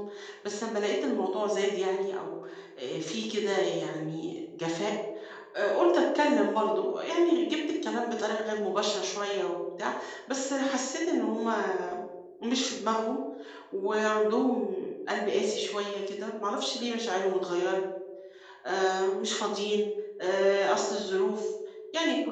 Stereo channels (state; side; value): identical; both; correlation 1.00